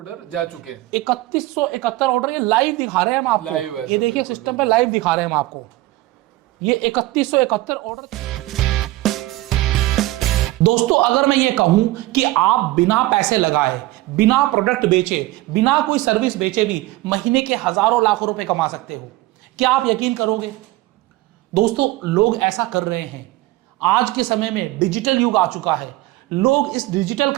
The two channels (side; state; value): left; quieter; 18.3 dB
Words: जा चुके हैं 3171 ऑर्डर, ये लाइव दिखा रहे हैं हम आपको। लाइव है ये देखिए सिस्टम पे लाइव दिखा रहे हैं हम आपको, ये 3171 ऑर्डर। दोस्तों अगर मैं ये कहूं कि आप बिना पैसे लगाए, बिना प्रोडक्ट बेचे, बिना कोई सर्विस बेचे भी महीने के हजारों लाखों रुपए कमा सकते हो, क्या आप यकीन करोगे? दोस्तों लोग ऐसा कर रहे हैं। आज के समय में डिजिटल युग आ चुका है, लोग इस डिजिटल